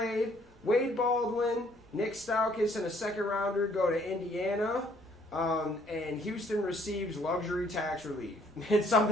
Wade Baldwin, Nick Stauskas, and a second rounder go to Indiana, and Houston receives luxury tax relief. It's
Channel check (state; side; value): normal; both; correlation 0.63